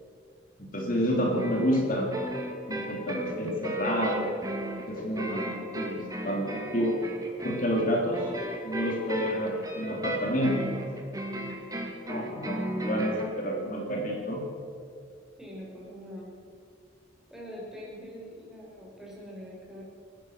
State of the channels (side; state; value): both; normal; correlation 0.39